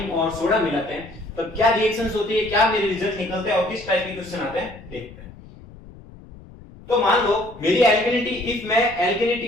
और सोडा मिलाते हैं, तब क्या रिएक्शंस होती है, क्या मेरे रिजल्ट निकलते हैं और किस टाइप के क्वेश्चन आते हैं, देखते हैं। तो मान लो मेरी एल्केनिटी, इफ मैं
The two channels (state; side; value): noise; left; rumble, 20 dB below the sound